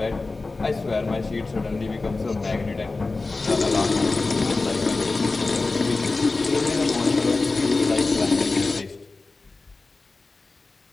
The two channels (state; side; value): quieter; right; 3.6 dB